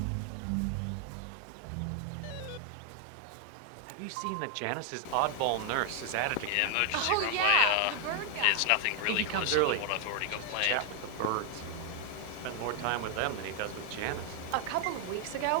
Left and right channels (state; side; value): different; both; correlation 0.00